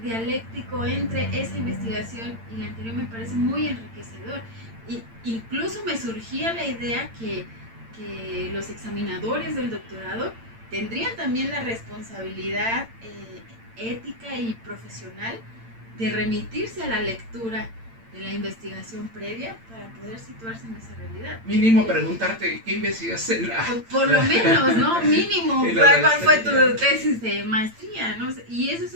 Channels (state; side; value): late; left; 8.8 ms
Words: dialéctico entre esa investigación y la anterior me parece muy enriquecedor. Y incluso me surgía la idea que los examinadores del doctorado tendrían también la responsabilidad ética y profesional de remitirse a la lectura de la investigación previa para poder situarse en esa realidad. Mínimo preguntarte qué investigaste en la... Por lo menos, ¿no? Mínimo, ¿cuál fue tu tesis de maestría? ¿No? Y esos